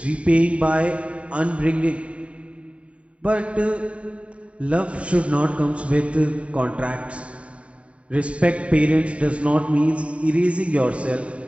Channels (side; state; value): left; late; 0.064 ms